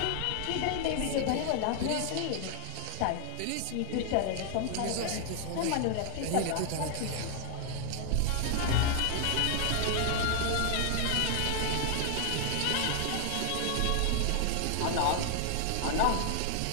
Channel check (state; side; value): different; both; correlation 0.00